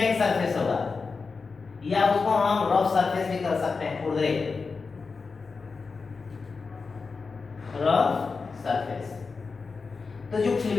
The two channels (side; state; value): right; quieter; 4.6 dB